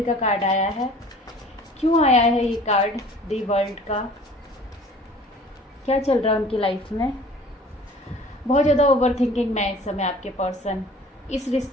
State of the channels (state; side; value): normal; both; correlation 0.48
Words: का कार्ड आया है। क्यों आया है ये कार्ड दी वर्ल्ड का? क्या चल रहा है उनकी लाइफ में? बहुत ज़्यादा ओवर थिंकिंग में है इस समय आपके पर्सन। इस